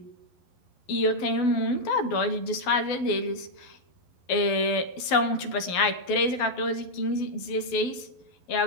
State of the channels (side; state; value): right; late; 11 ms